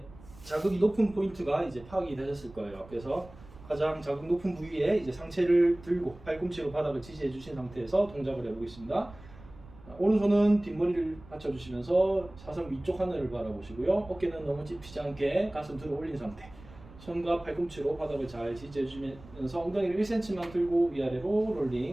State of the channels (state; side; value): noise; right; rumble, 20 dB below the sound